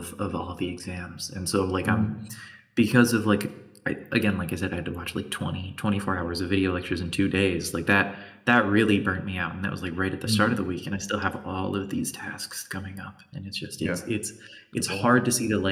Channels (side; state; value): both; identical; correlation 1.00